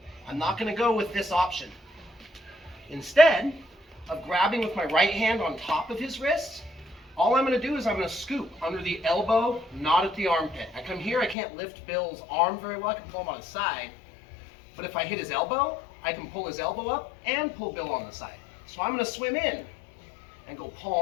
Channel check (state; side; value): drops out; right; at 11.4 s